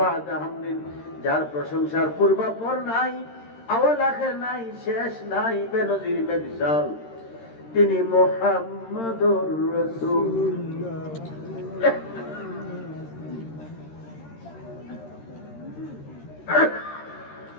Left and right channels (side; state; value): right; late; 13 ms